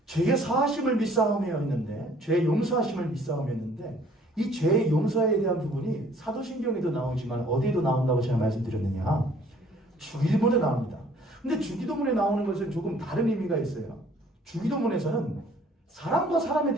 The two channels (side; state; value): both; normal; correlation 0.57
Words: 죄의 사하심을 믿사오며 했는데, 죄의 용서하심을 믿사오며 했는데, 이 죄의 용서에 대한 부분이 사도신경에도 나오지만 어디에도 나온다고 제가 말씀드렸느냐? 주일본에 나옵니다. 근데 주기도문에 나오는 것은 조금 다른 의미가 있어요. 주기도문에서는 사람과 사람에